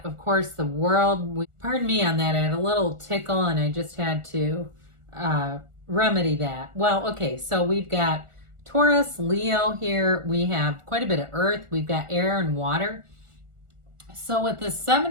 of course, the World. Pardon me on that. I had a little tickle and I just had to remedy that. Well, okay, so we've got Taurus, Leo here. We have quite a bit of earth. We've got air and water. So with the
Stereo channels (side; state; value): left; late; 1.4 ms